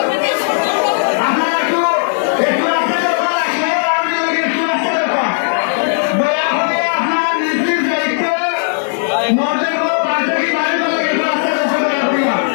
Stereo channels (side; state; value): right; silent; 69 dB below the other